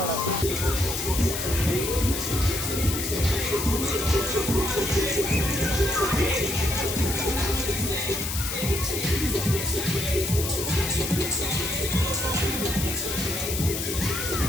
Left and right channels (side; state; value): left; noise; hiss, 4 dB below the sound